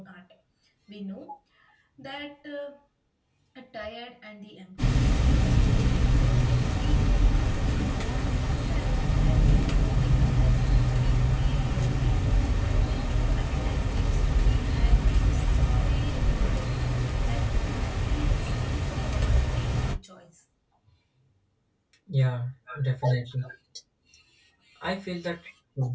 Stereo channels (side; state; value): both; identical; correlation 1.00